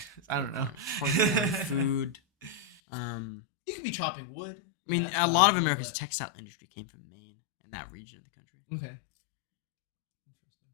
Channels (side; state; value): right; drops out; at 2.8 s